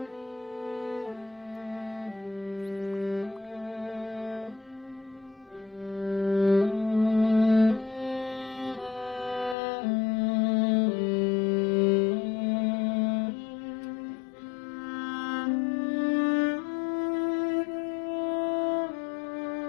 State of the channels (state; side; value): drops out; right; at 9.6 s